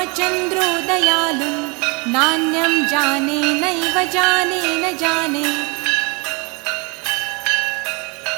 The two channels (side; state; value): left; quieter; 30.0 dB